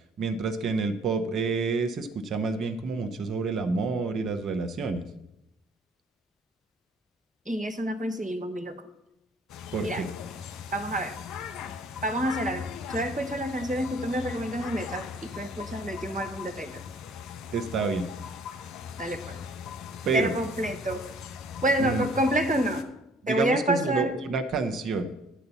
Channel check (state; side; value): normal; both; correlation 0.57